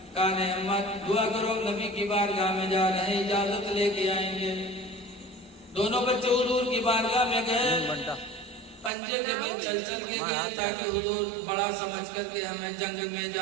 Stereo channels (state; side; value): drops out; left; at 8.9 s